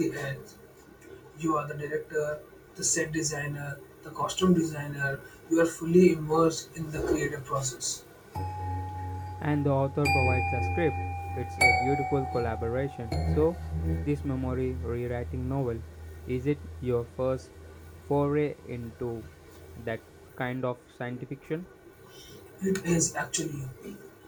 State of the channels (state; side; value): identical; both; correlation 1.00